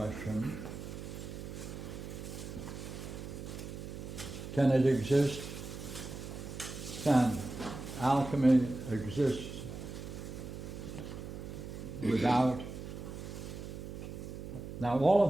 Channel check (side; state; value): right; noise; hum, 9 dB below the sound